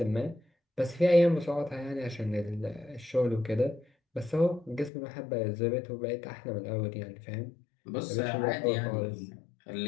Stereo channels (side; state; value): right; drops out; at 4.9 s